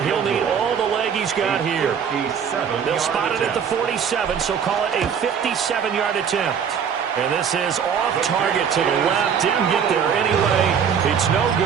he'll need all the leg he's got here. They'll spot it at the 47, so call it a 57-yard attempt. And this is off target to the left. Didn't get there anyway. It's no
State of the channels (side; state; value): left; quieter; 7.4 dB